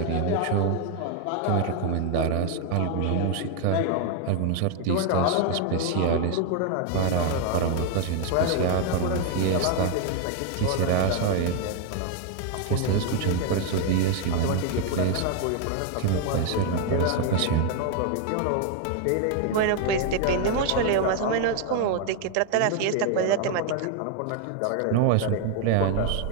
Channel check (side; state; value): both; different; correlation 0.01